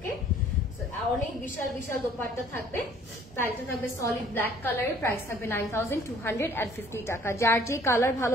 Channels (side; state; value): both; normal; correlation 0.57